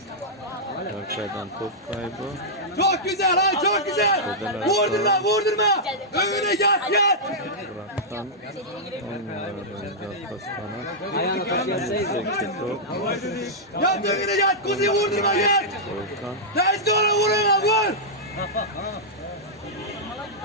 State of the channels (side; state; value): both; normal; correlation -0.10